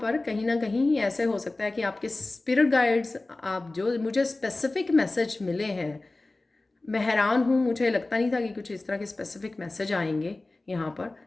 कहीं ना कहीं ऐसे हो सकता है कि आपके स्पिरिट गाइड्स, आप जो मुझे स्पेसिफिक मैसेज मिले हैं, मैं हैरान हूँ, मुझे लगता नहीं था कि कुछ इस तरह के स्पेसिफिक मैसेज आएंगे यहाँ पर।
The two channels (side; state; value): right; quieter; 3.0 dB